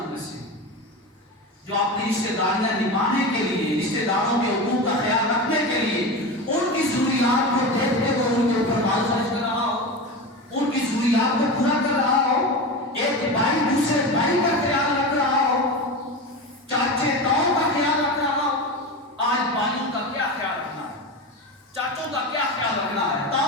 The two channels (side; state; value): both; normal; correlation 0.24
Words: میں سے جو اپنی رشتہ داریاں نبھانے کے لیے، رشتہ داروں کے حقوق کا خیال رکھنے کے لیے ان کی ضروریات کو دیکھتے ہوئے ان کے اوپر مال خرچ کر رہا ہو، ان کی ضروریات کو پورا کر رہا ہو، ایک بھائی دوسرے بھائی کا خیال رکھ رہا ہو، چاچے تاؤں کا خیال رکھ رہا ہو. آج بھائیوں کا کیا خیال رکھنا ہے، چاچوں کا کیا خیال رکھنا ہے،